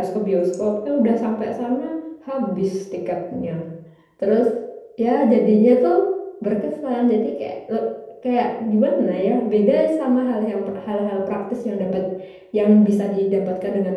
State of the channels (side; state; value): both; identical; correlation 1.00